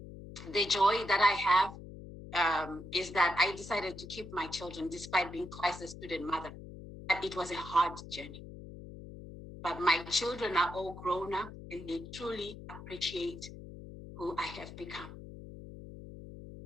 The joy that I have is that I decided to keep my children despite being twice a student mother. But it was a hard journey. But my children are all grown up and they truly appreciate who I have become.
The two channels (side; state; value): left; noise; hum, 13 dB below the sound